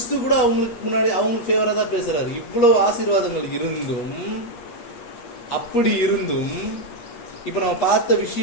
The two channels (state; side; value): late; right; 8.4 ms